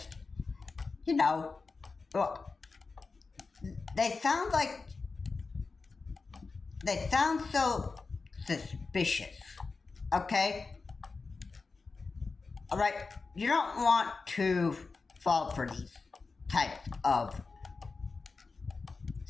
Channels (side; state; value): right; quieter; 4.3 dB